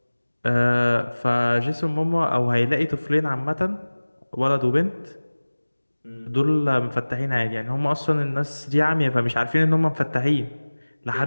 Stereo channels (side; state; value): both; inverted; correlation -1.00